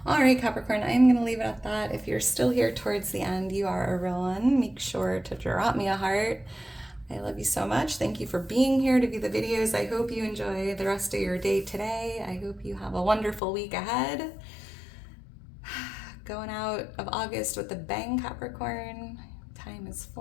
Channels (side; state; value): right; drops out; at 13.4 s